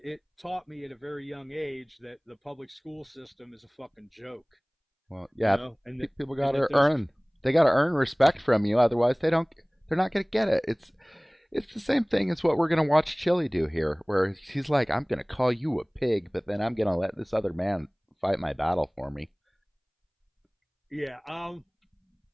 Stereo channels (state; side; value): identical; both; correlation 1.00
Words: taught me at a very young age that the public school system is a fucking joke. Well, yeah, you know? And people got to they got to earn respect from you. Otherwise, they're not going to get it. It's the same thing as what we're going to watch Chili do here, where he's like, "I'm going to call you a pig, but then I'm going to let this other man fight my battle for me." Yeah, I